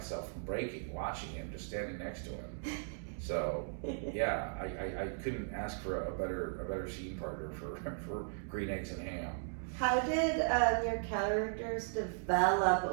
from breaking, watching him, just standing next to him. So yeah, I couldn't ask for a better scene partner for Green Eggs and Ham. How did your characters develop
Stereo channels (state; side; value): silent; left; digital silence